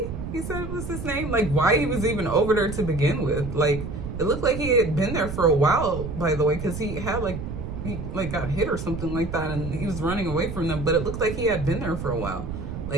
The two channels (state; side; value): noise; right; rumble, 7 dB below the sound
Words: he said was his name. Like, why he was even over there to begin with. Like, it looked like he had been there for a while, by the way, because he had like he like got hit or something like that, and he was running away from them. But it looked like he had been there for a while.